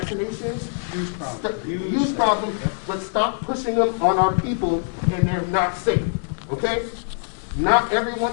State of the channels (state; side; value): silent; right; digital silence